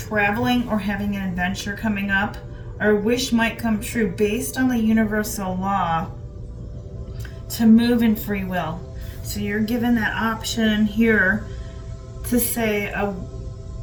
or having an adventure coming up, or a wish might come true based on the universal law to move in free will. So you're given that option here to say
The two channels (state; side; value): identical; both; correlation 1.00